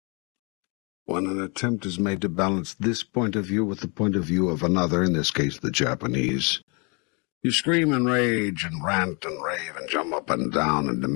When an attempt is made to balance this point of view with the point of view of another, in this case the Japanese, you scream and rage and rant and rave and jump up and down and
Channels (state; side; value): quieter; right; 32.6 dB